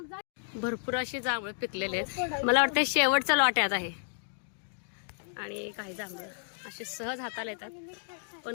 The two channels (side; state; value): right; silent; 57 dB below the other